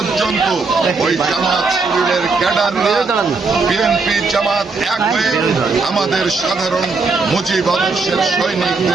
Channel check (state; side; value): quieter; left; 4.2 dB